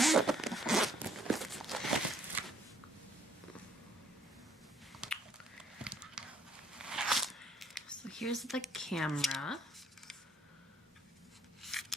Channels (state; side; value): normal; both; correlation 0.63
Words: Here's the camera.